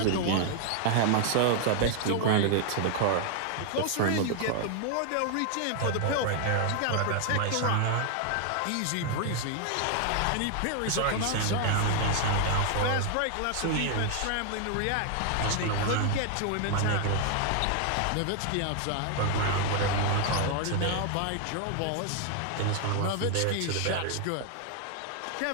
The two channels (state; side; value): different; both; correlation 0.00